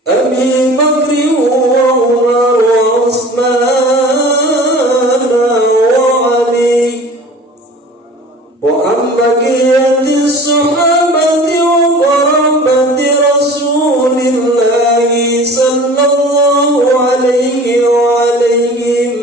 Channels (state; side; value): normal; both; correlation 0.42